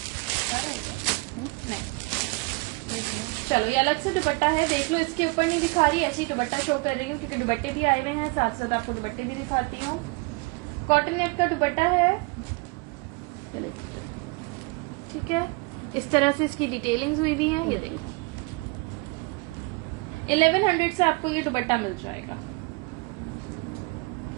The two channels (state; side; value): quieter; left; 27.1 dB